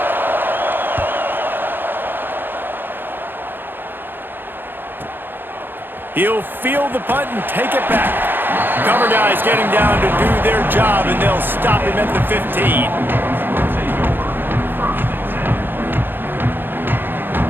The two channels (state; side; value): late; left; 0.097 ms